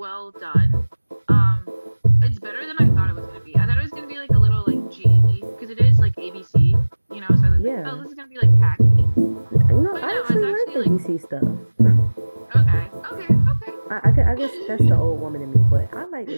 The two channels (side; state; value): both; inverted; correlation -1.00